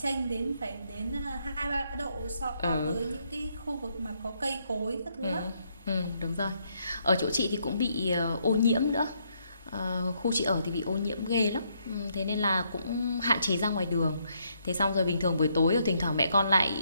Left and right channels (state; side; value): inverted; both; correlation -0.74